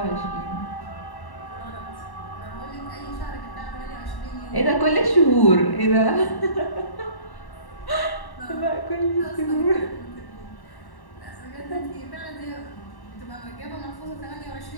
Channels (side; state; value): right; late; 1.1 ms